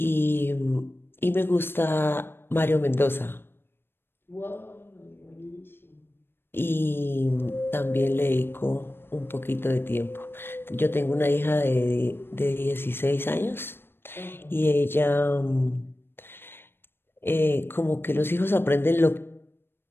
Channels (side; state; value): right; late; 0.10 ms